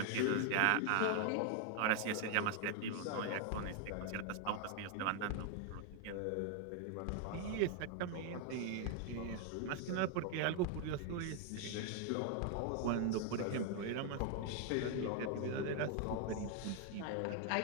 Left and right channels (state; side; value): different; both; correlation 0.00